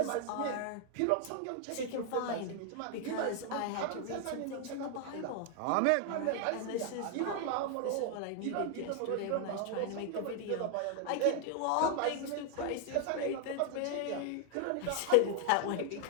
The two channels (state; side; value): different; both; correlation 0.00